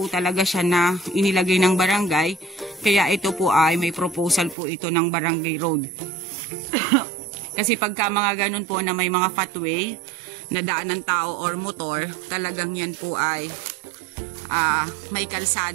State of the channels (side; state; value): left; drops out; at 4.5 s